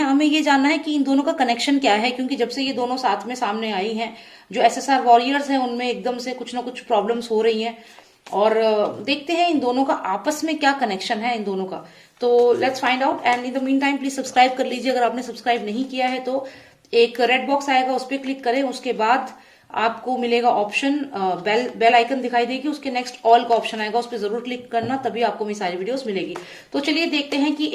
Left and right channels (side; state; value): both; identical; correlation 1.00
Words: हमें ये जानना है कि इन दोनों का कनेक्शन क्या है, क्योंकि जब से ये दोनों साथ में सामने आई हैं, जो SSR वॉरियर्स हैं उनमें एकदम से कुछ ना कुछ प्रॉब्लम्स हो रही हैं। और देखते हैं इन दोनों का आपस में क्या कनेक्शन है इन दोनों का। तो let's find out. And in the mean time please subscribe कर लीजिए अगर आपने सब्सक्राइब नहीं किया है तो। एक रेड बॉक्स आएगा, उस पर क्लिक करें, उसके बाद आपको मिलेगा ऑप्शन, बेल आइकन दिखाई देगी, उसके नेक्स्ट ऑल का ऑप्शन आएगा, उस पर जरूर क्लिक करना, तभी आपको मेरी सारी वीडियोस मिलेगी। तो चलिए देखते हैं कि